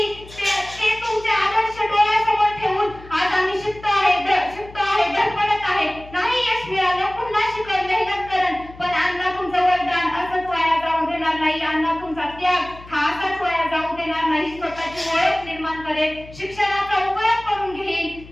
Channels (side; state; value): left; noise; hum, 19 dB below the sound